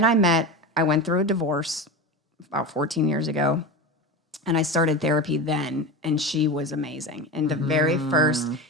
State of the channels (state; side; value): normal; both; correlation 0.25